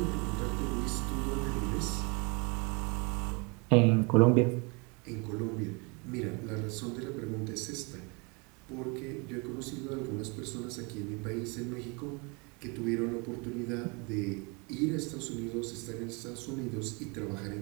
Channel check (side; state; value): left; quieter; 30.8 dB